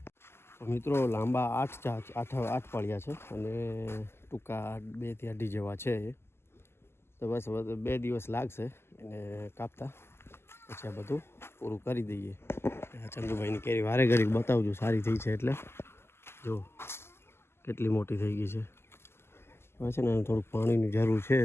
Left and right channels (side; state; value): right; late; 0.12 ms